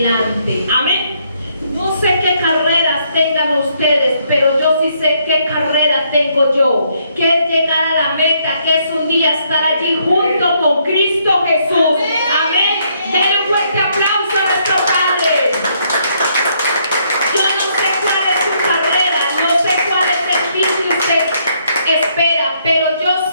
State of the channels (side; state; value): both; inverted; correlation -0.71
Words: Amén. No sé qué carreras tengan ustedes, pero yo sí sé qué carrera tengo yo, que es llegar a la meta, que es un día estar allí junto con Cristo Jesús. Amén. Denle un fuerte aplauso a nuestro Padre. Yo no sé cuál es su carrera, no sé cuál es el fin que usted espera, pero yo